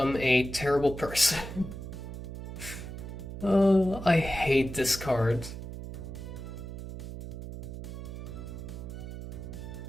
a terrible person. I hate this card.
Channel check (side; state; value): right; noise; hum, 9 dB below the sound